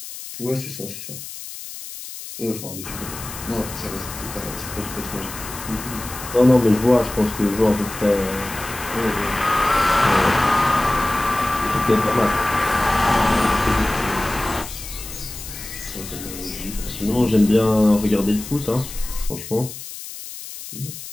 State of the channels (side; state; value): left; noise; hiss, 11 dB below the sound